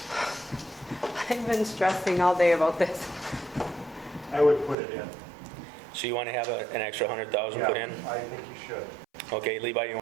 I've been stressing all day about this. I would put it in. So you want to have an extra 100,000 put in? Yeah, I think you should. Okay, Levi, you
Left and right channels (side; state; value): left; drops out; at 4.8 s